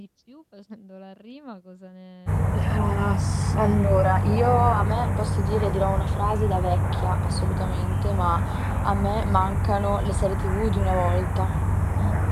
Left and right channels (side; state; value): both; identical; correlation 1.00